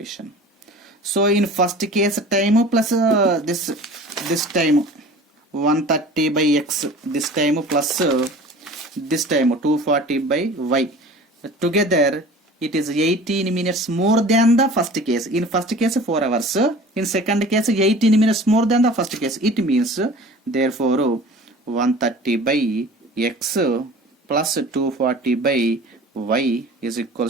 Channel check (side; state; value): both; normal; correlation 0.42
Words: So in first case time plus this time 130 by x, this time plus this time 240 by y, together it is 18 minutes more than the first case. In first case 4 hours, in second case 18 minutes more than the first case. It means therefore 130 by x plus 240 by y is